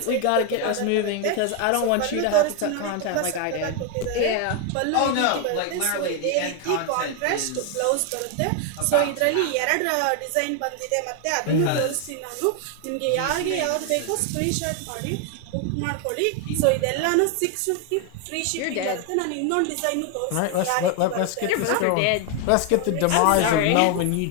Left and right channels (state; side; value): different; both; correlation 0.01